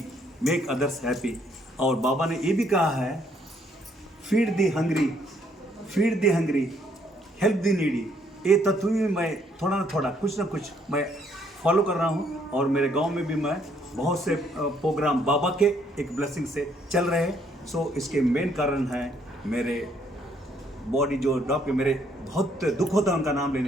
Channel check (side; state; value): both; normal; correlation 0.68